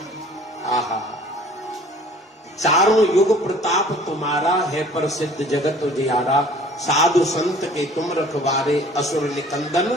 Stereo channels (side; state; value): both; normal; correlation 0.51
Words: आहा, चारों युग प्रताप तुम्हारा है प्रसिद्ध जगत उजियारा, साधु संत के तुम रखवारे असुर निकंदन